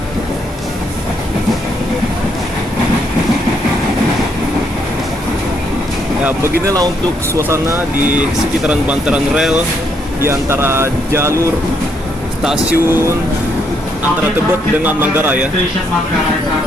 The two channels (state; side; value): normal; both; correlation 0.74